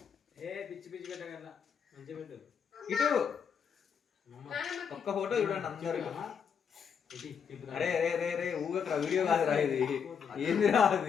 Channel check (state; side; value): quieter; right; 7.0 dB